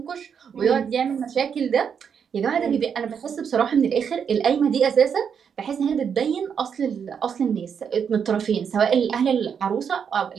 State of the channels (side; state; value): left; quieter; 7.2 dB